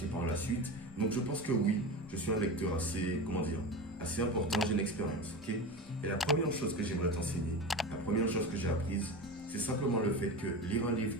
par la suite. Donc je pense que oui, je suis un lecteur assez, assez important. J'ai une expérience, ok? Et la première chose que j'aimerais t'enseigner, la première chose que j'ai apprise, c'est simplement le fait que lire un livre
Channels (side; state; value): both; normal; correlation 0.26